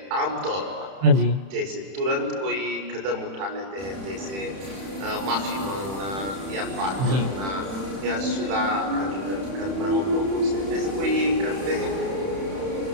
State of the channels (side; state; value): left; late; 31 ms